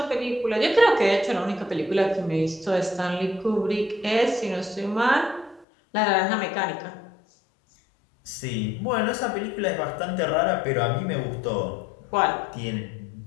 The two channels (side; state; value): right; drops out; at 5.7 s